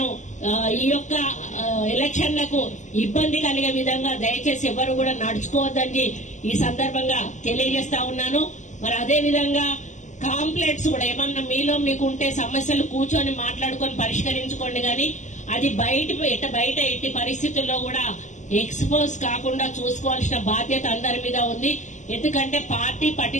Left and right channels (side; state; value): right; late; 0.35 ms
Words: ఈ యొక్క ఎలక్షన్లకు ఇబ్బంది కలిగే విధంగా దయచేసి ఎవరు కూడా నడుచుకోవద్దని ఈ సందర్భంగా తెలియజేస్తా ఉన్నాను. మరి అదే విధంగా కాంప్లైంట్స్ కూడా ఏమన్నా మీలో మీకు ఉంటే సమస్యలు కూర్చొని మాట్లాడుకొని పరిష్కరించుకోండి. కానీ అది బయట ఎట్టి పరిస్థితుల్లో కూడా ఎక్స్పోజ్ కాకుండా చూసుకోవాల్సిన బాధ్యత అందరి మీద ఉంది. ఎందుకంటే పార్టీ